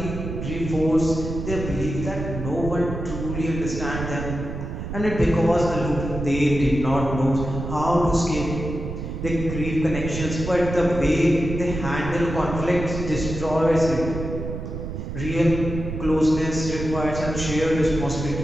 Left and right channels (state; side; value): noise; right; rumble, 6 dB below the sound